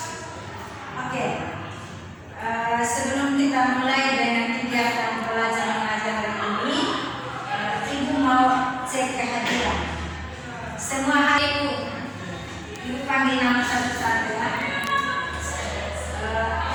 Oke. Sebelum kita mulai dengan kegiatan belajar mengajar hari ini, Ibu mau cek kehadiran. Semua hari Ibu panggil nama satu-satu ya.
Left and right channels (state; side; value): identical; both; correlation 1.00